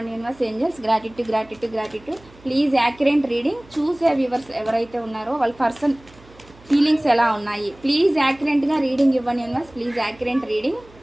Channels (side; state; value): right; noise; hum, 25 dB below the sound